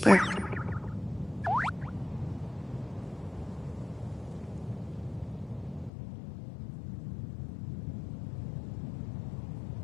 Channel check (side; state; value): right; drops out; at 5.9 s